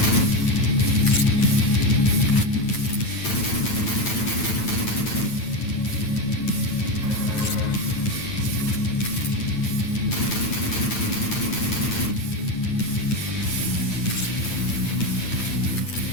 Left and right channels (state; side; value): late; right; 9.2 ms